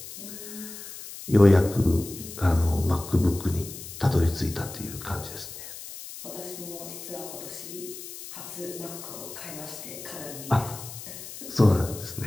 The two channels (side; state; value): left; noise; hiss, 12 dB below the sound